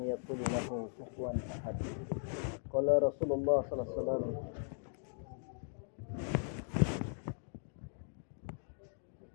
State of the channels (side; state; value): right; silent; 52 dB below the other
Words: yakul lahu kufuwan ahad. Qala Rasulullah sallallahu alaihi wasallam.